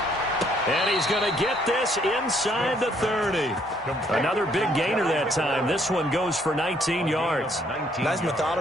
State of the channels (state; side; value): normal; both; correlation 0.67